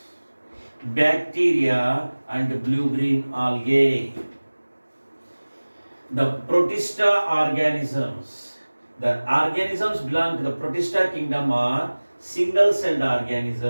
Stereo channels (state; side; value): inverted; both; correlation -1.00